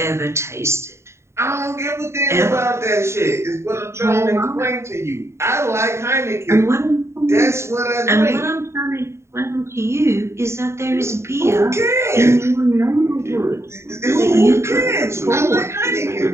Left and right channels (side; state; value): left; late; 0.13 ms